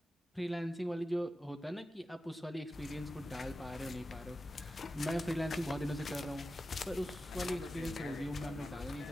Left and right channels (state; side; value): normal; both; correlation 0.92